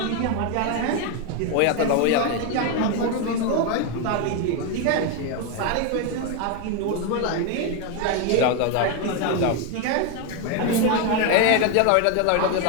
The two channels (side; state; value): both; different; correlation 0.01